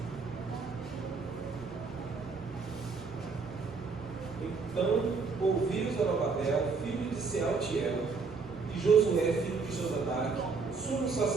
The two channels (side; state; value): left; quieter; 4.7 dB